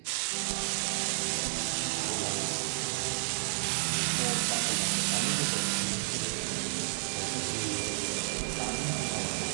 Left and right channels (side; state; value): left; silent; 57 dB below the other